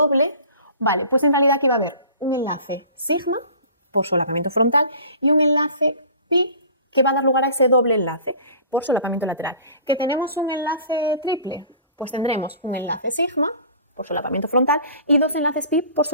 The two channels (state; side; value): inverted; both; correlation -0.44